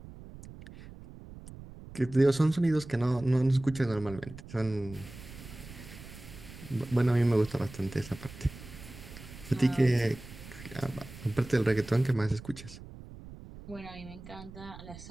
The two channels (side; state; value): right; noise; rumble, 15 dB below the sound